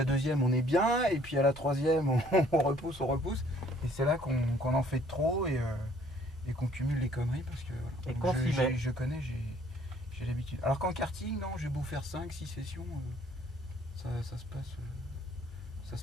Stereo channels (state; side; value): normal; both; correlation 0.60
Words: deuxième, on est bien, et puis à la troisième, on repousse. Et c'est là qu'on en fait trop et qu'on cumule les conneries parce que voilà. Et qu'on s'y met. Je connais, j'ai l'habitude. Alors qu'en karting, non, j'ai beau faire 5-6 sessions, ça